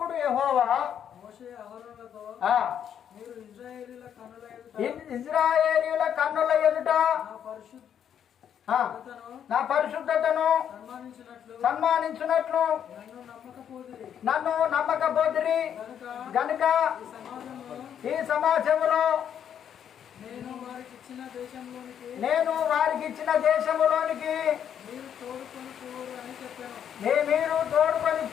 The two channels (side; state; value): right; quieter; 9.0 dB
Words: యెహోవా మోషే అహరోనులతో ఆ, మీరు ఇశ్రాయేలీయుల కన్నుల ఎదుట నా నా పరిశుద్ధతను సన్మానించినట్లు నన్ను నమ్మకపోతిరి గనుక ఈ సమాజంలో నేను వారికి ఇచ్చిన దేశంలోనికి మీరు తోడుకొని